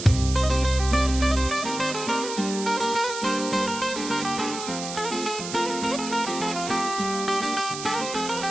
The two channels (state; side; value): noise; right; hiss, 8 dB below the sound